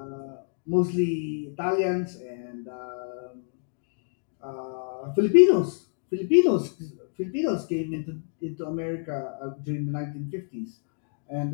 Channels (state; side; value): silent; right; digital silence